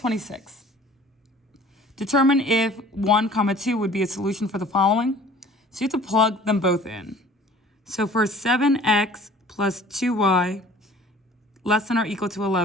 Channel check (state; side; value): normal; both; correlation 0.49